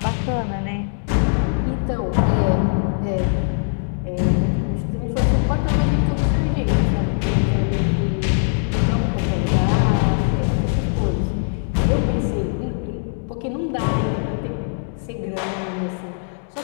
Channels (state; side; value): silent; right; digital silence